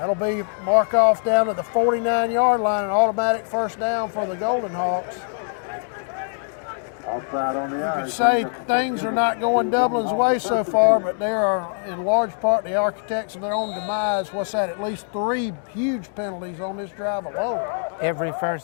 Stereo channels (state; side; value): silent; right; 64 dB below the other